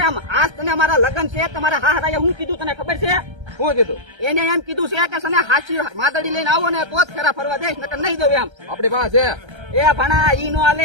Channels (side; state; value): left; late; 1.3 ms